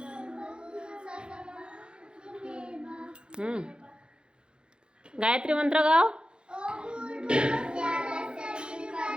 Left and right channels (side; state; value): left; late; 0.051 ms